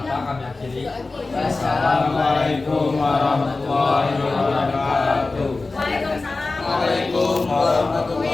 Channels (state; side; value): quieter; right; 3.5 dB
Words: kami akhiri. Assalamualaikum warahmatullahi wabarakatuh. Waalaikumsalam. Waalaikumsalam